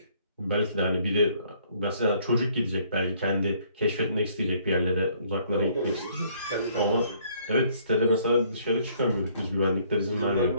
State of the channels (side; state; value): both; inverted; correlation -0.63